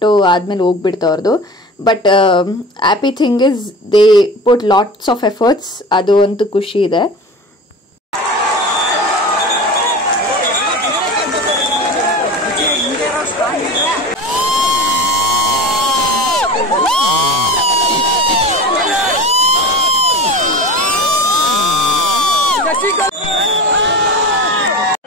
ಆದಮೇಲೆ ಹೋಗ್ಬಿಡ್ತು ಅವ್ರದ್ದು. But happy thing is they put lots of efforts, ಅದು ಅಂತೂ ಖುಷಿ ಇದೆ.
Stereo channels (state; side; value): normal; both; correlation 0.33